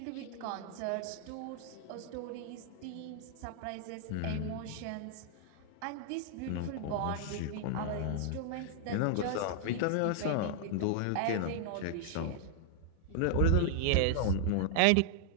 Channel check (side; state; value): both; different; correlation 0.00